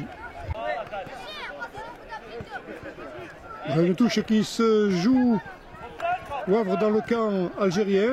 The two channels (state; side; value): identical; both; correlation 1.00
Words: Une touche qui se joue, Wavre dans le camp